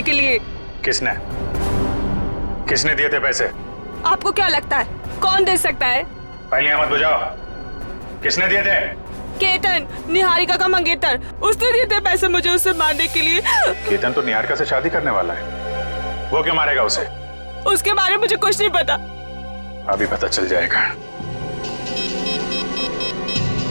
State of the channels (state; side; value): inverted; both; correlation -1.00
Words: के लिए। किसने किसने दिए थे पैसे? आपको क्या लगता है कौन दे सकता है? पहले मत बुझाओ, किसने दिए थे? केतन, निहारिका का मंगेतर, उसने दिए थे पैसे मुझे उसे मारने के लिए। केतन तो निहारिका से शादी करने वाला है, वो क्यों मारेगा उसे? उसके बारे में मुझे कुछ नहीं पता। अभी पता चल जाएगा।